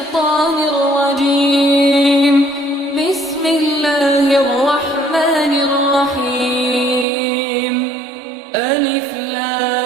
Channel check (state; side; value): drops out; left; at 7.1 s